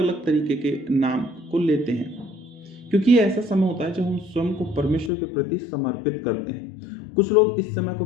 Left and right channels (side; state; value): right; drops out; at 5.1 s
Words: तरीके के नाम को लेते हैं, क्योंकि ये ऐसा समय होता है जब हम स्वयं को परमेश्वर के प्रति समर्पित करते हैं। कुछ लोग इस समय को